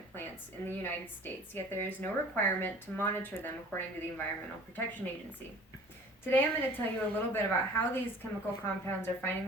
plants in the United States, yet there is no requirement to monitor them according to the Environmental Protection Agency. Today I'm going to tell you a little bit about how these chemical compounds are finding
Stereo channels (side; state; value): both; normal; correlation 0.47